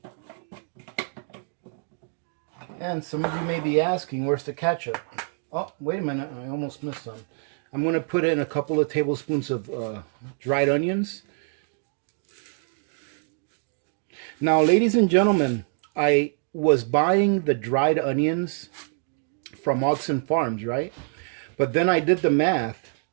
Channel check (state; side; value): silent; left; 56 dB below the other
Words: And some of you may be asking, where's the ketchup? Oh, wait a minute. I almost missed some. I'm going to put in a couple of tablespoons of dried onions. Now, ladies and gentlemen, I was buying the dried onions from Oxen Farms, right? But then I did the math,